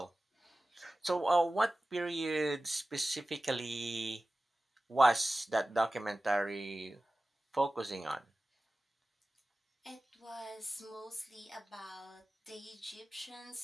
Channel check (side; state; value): both; normal; correlation 0.96